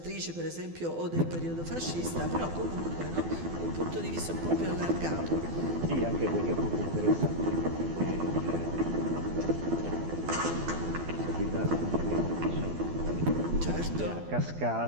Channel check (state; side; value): late; left; 12 ms